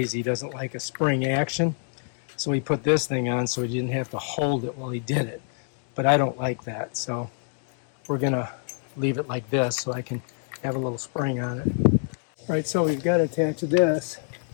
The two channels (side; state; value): right; silent; 61 dB below the other